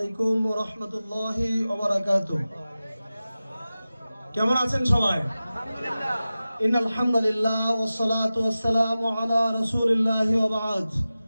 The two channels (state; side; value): inverted; both; correlation -0.95